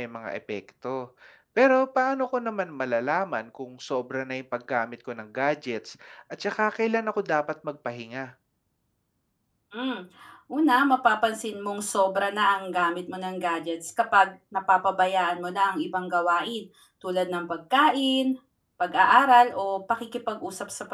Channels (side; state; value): both; identical; correlation 1.00